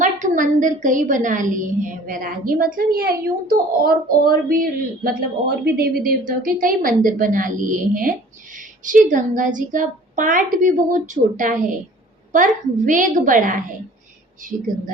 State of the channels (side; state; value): both; normal; correlation 0.49